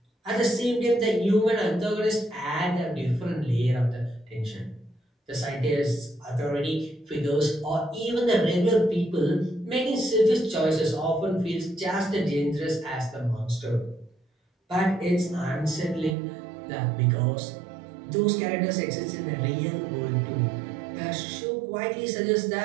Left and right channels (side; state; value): left; drops out; at 16.2 s